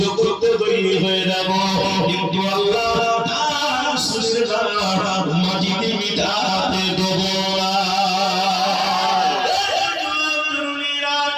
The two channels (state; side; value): identical; both; correlation 1.00